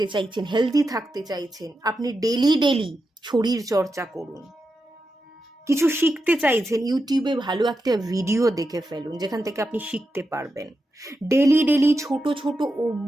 চাইছেন, হেলদি থাকতে চাইছেন, আপনি ডেলি ডেলি শরীর চর্চা করুন। কিছু শিখতে চাইছেন, ইউটিউবে ভালো একটা ভিডিও দেখে ফেলুন যেখান থেকে আপনি শিখতে পারবেন। ডেলি ডেলি ছোট ছোট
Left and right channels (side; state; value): both; normal; correlation 0.88